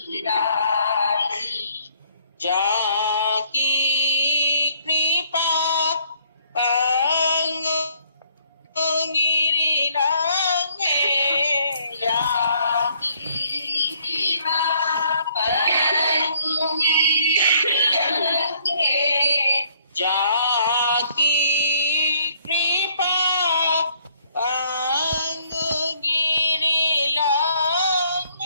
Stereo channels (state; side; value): inverted; both; correlation -0.64